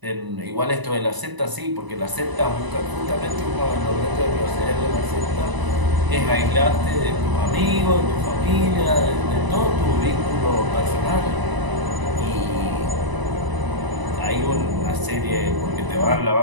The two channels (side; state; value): left; late; 1.0 ms